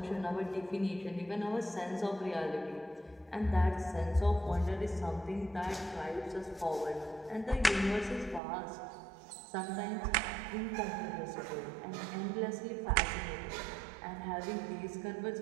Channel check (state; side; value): drops out; left; at 8.4 s